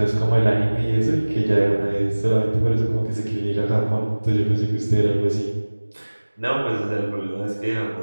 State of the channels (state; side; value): inverted; both; correlation -1.00